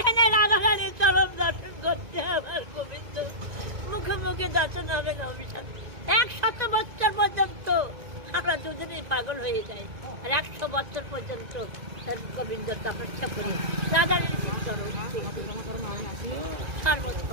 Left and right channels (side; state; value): left; late; 1.9 ms